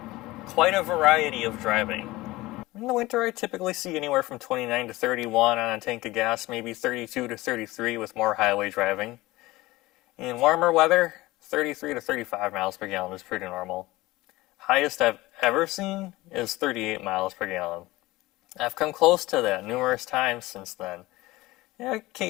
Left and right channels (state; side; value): quieter; right; 19.3 dB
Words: quite a variety of driving. In the winter, I typically see anywhere from 29 to 31 on a tank of gas, maybe 32 to 33 with more highway driving. In warmer weather, 33 to 35 miles per gallon is pretty normal. Highest I've ever seen is 38 miles per gallon. I've come close to that numerous times since then. Yeah,